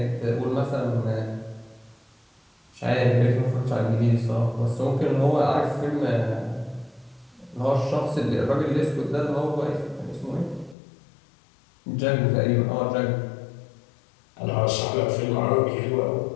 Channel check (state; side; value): drops out; right; at 10.8 s